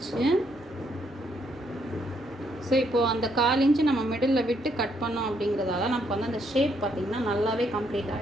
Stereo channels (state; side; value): normal; both; correlation 0.73